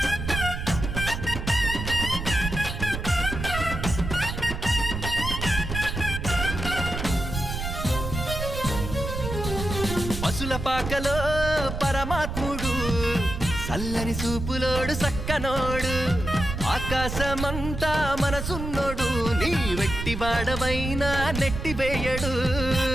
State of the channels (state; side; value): noise; right; rumble, 5 dB below the sound